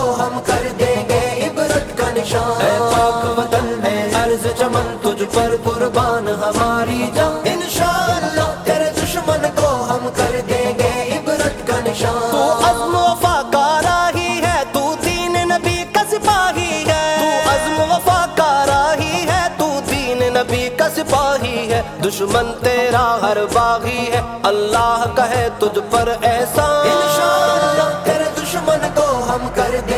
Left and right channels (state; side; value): identical; both; correlation 1.00